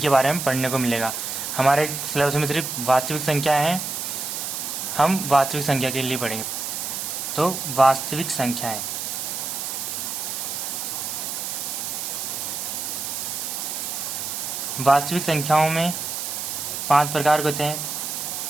बारे में पढ़ने को मिलेगा। हमारे सिलेबस में सिर्फ वास्तविक संख्या है, हम वास्तविक संख्या के लिए पढ़ेंगे। तो वास्तविक संख्याएं, वास्तविक संख्याओं में 5 प्रकार के होते हैं।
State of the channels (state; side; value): noise; right; hiss, 4 dB below the sound